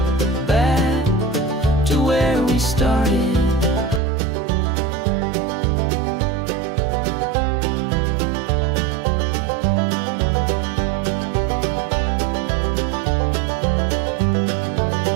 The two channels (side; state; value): left; drops out; at 4.0 s